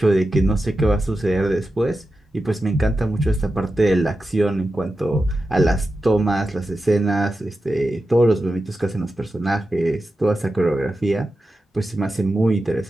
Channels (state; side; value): normal; both; correlation 0.91